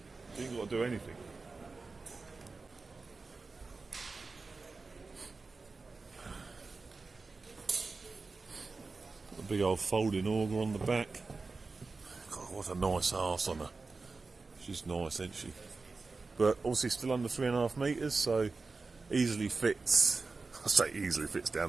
You ain't got to do anything. Got a big old folding auger on the back. God, what a nice arse on her. She's nice, isn't she? But obviously still under 3.5 metres, so easily fits. I say easily fits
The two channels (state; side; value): quieter; left; 4.0 dB